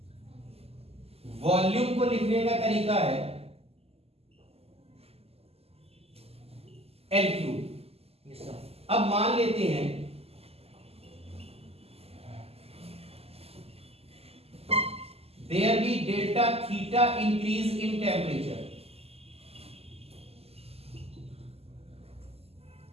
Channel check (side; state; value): left; late; 0.29 ms